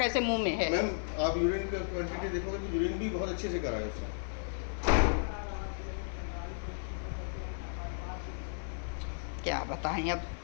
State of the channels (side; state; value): right; silent; digital silence